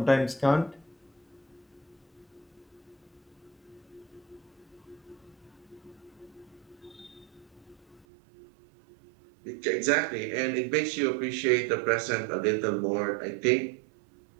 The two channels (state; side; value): drops out; left; at 8.1 s